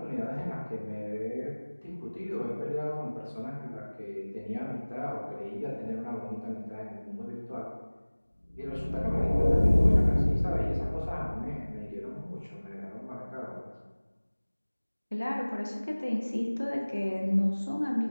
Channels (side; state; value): both; inverted; correlation -1.00